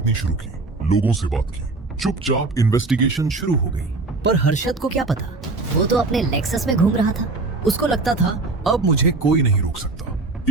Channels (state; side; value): quieter; left; 3.5 dB